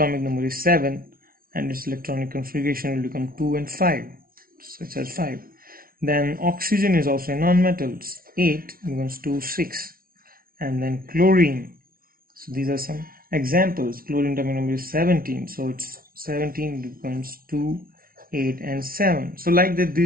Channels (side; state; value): left; late; 0.43 ms